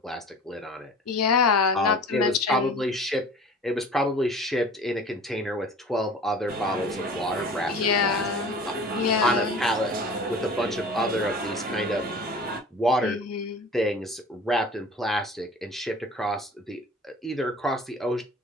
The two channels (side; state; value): both; normal; correlation 0.42